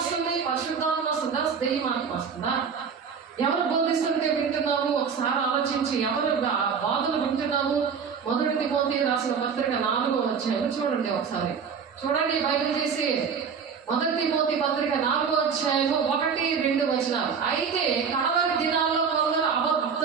పరిశుద్ధాత్మ వస్తుందా? దెయ్యమాత్మ వస్తుందా? ఎవరు బోధిస్తుంటే వింటున్నాము? ఒకసారి ఆలోచించి ఎవరు బాధలు వింటున్నాము? 1 తిమోతి రాసిన పత్రిక 4వ అధ్యాయం చూడండి. ఒకసారి చూడండి బైబిల్ తీసి. 1 తిమోతి పత్రిక 4వ అధ్యాయము 1-2 వచనాలు. అయితే కడవరి దినాల్లో కొందరు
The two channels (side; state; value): left; quieter; 6.3 dB